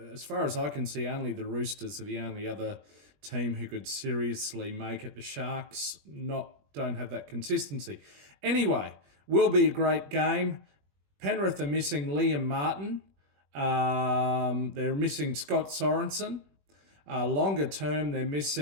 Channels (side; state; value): left; late; 21 ms